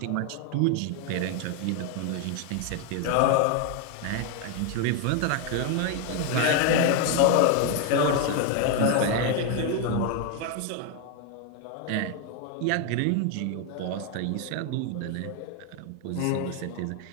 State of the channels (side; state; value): both; different; correlation 0.01